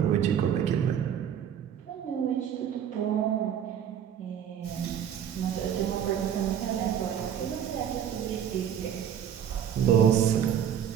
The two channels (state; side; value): quieter; left; 9.0 dB